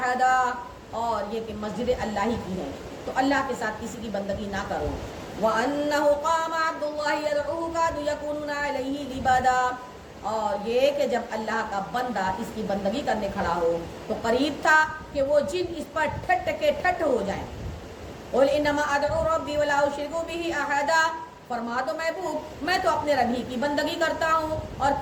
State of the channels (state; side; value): identical; both; correlation 1.00